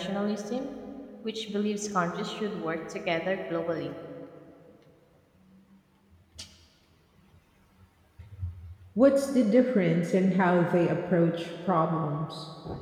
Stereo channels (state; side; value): identical; both; correlation 1.00